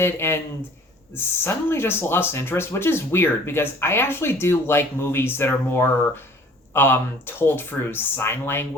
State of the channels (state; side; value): normal; both; correlation 0.51